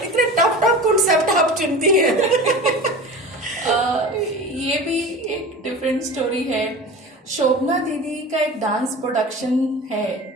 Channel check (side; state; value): both; normal; correlation 0.34